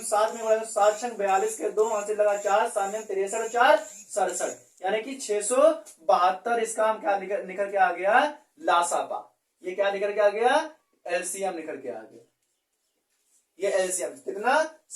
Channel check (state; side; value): identical; both; correlation 1.00